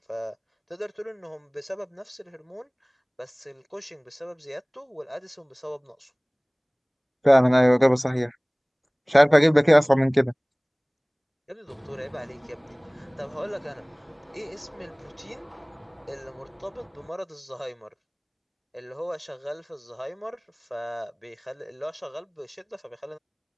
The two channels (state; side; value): identical; both; correlation 1.00